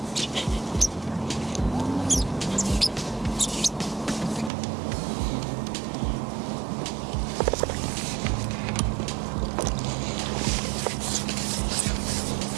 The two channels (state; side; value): drops out; left; at 4.5 s